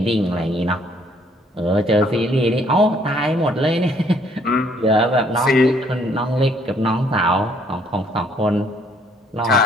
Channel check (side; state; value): both; normal; correlation 0.64